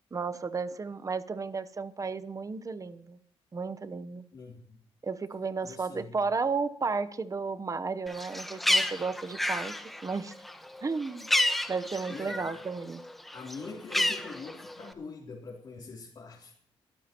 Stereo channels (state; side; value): normal; both; correlation 0.82